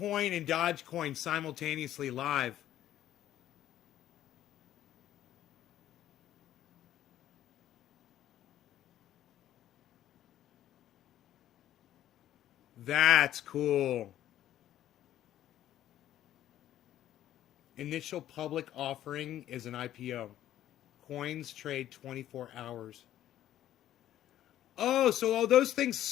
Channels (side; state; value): right; quieter; 12.4 dB